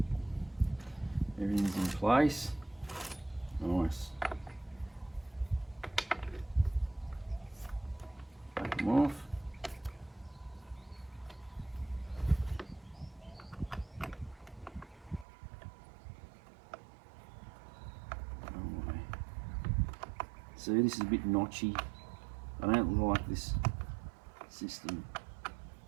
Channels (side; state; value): left; drops out; at 15.2 s